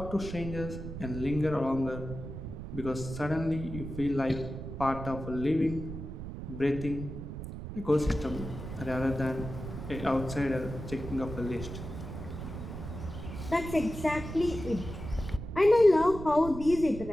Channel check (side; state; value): right; noise; rumble, 8 dB below the sound